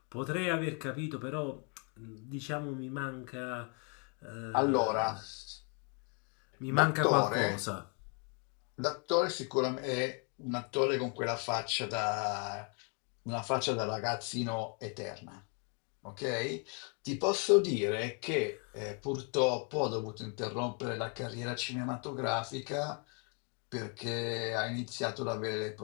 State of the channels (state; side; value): quieter; right; 37.4 dB